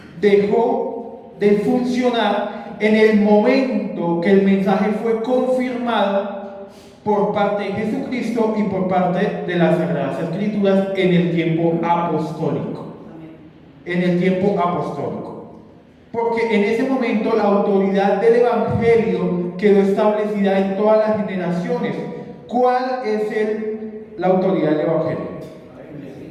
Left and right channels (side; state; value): both; identical; correlation 1.00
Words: dejó de funcionar en el momento que el mensaje fue confirmado por parte de Jesucristo y por parte de las Sagradas Escrituras en el tiempo apostólico. En el tiempo apostólico. Porque en ese momento la autoridad del Evangelio quedó establecida en todas las generaciones. ¿Cuál es la autoridad del Evangelio?